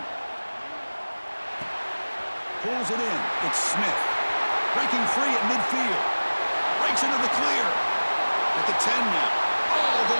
Pulls it in, it's Smith. Breaking free at midfield. Breaks into the clear. At the 10 now. All the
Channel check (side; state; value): both; inverted; correlation -1.00